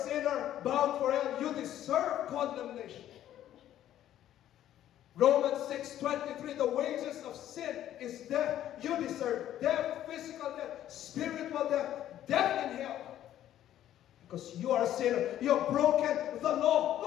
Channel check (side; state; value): right; quieter; 12.0 dB